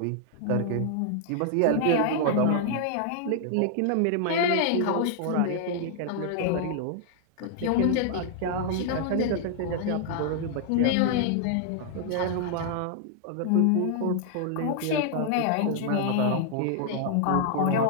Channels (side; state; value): both; different; correlation 0.00